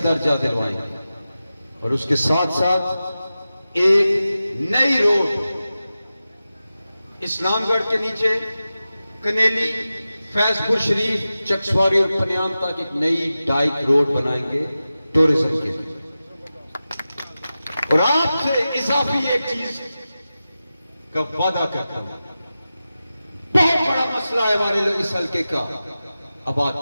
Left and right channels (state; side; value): inverted; both; correlation -0.94